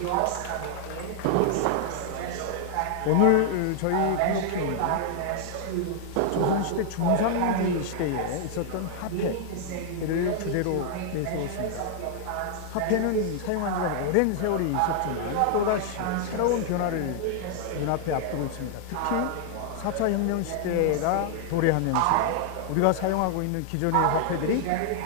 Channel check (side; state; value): both; different; correlation 0.00